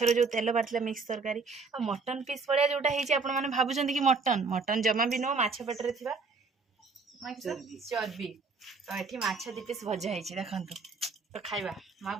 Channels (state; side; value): quieter; left; 4.4 dB